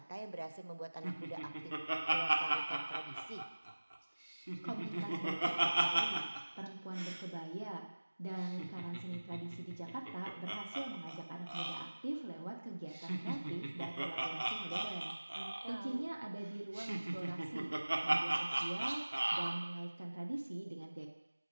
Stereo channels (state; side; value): inverted; both; correlation -1.00